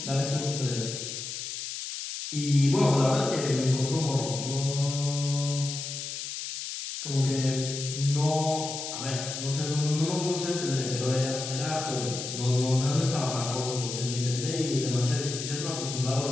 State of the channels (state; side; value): noise; left; hiss, 6 dB below the sound